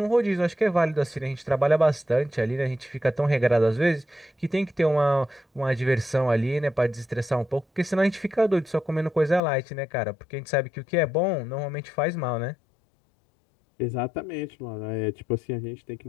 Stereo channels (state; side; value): drops out; right; at 9.4 s